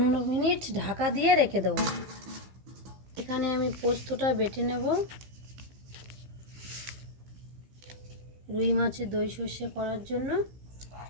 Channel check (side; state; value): left; late; 15 ms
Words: মিনিট ঢাকা দিয়ে রেখে দেব। এখানে আমি পোস্তটা বেটে নেব। রুই মাছের দই সর্ষে করার জন্য